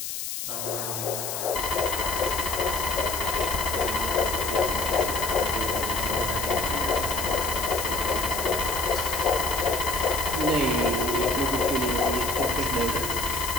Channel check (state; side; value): noise; left; hiss, 5 dB below the sound